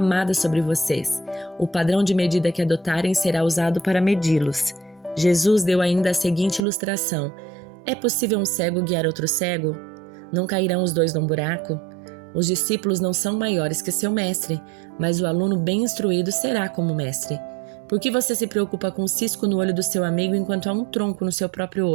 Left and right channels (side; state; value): left; drops out; at 6.6 s